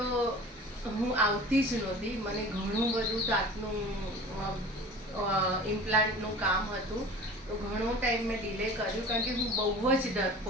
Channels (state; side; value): normal; both; correlation 0.40